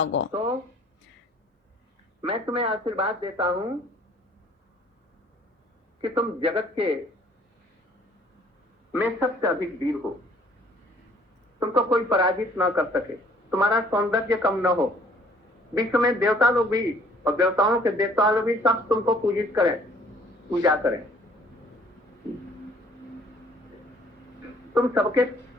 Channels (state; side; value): normal; both; correlation 0.58